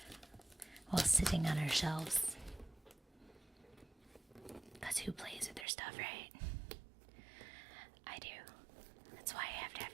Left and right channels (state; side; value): drops out; left; at 5.7 s